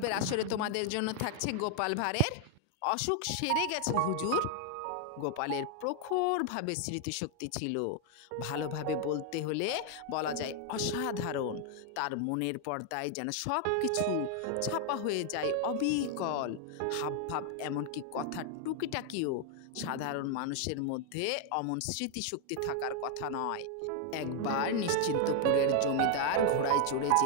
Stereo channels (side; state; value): both; different; correlation 0.00